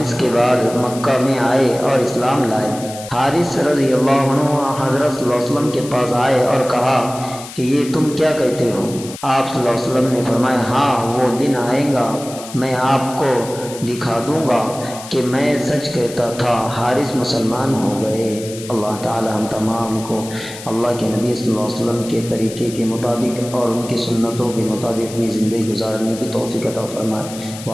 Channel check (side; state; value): left; noise; hiss, 14 dB below the sound